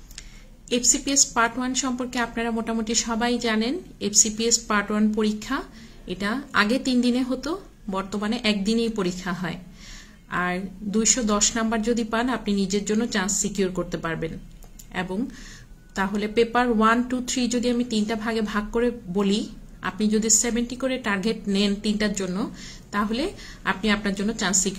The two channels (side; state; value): both; identical; correlation 1.00